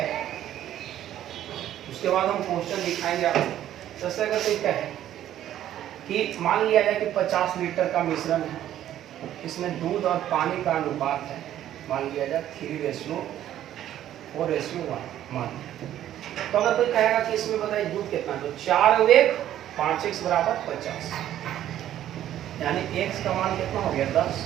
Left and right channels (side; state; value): left; quieter; 11.9 dB